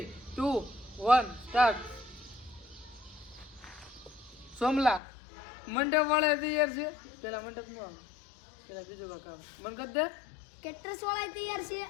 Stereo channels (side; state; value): right; drops out; at 5.0 s